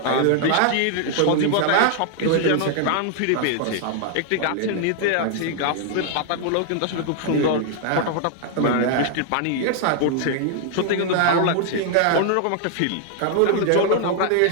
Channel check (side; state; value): both; different; correlation 0.00